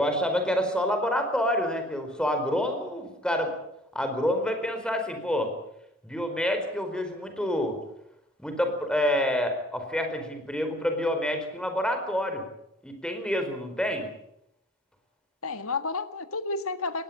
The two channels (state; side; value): normal; both; correlation 0.52